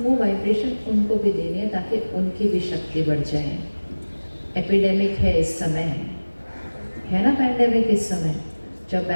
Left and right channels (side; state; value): both; inverted; correlation -1.00